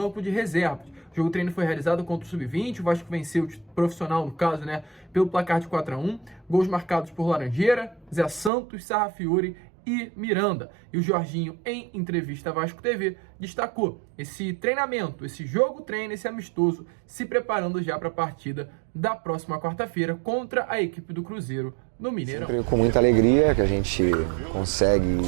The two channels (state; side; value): drops out; left; at 8.5 s